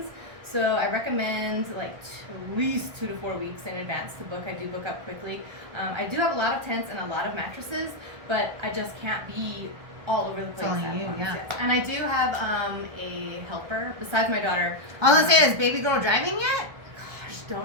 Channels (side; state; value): left; late; 1.2 ms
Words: So I recommend like at least 2 to 4 weeks in advance to book. I do book up quickly. I do have a lot of tents and a lot of mattresses, but I just can't be all over the place at once. Yes. And I do have a helper besides my daughter. I was gonna say, is baby girl driving yet? Gosh,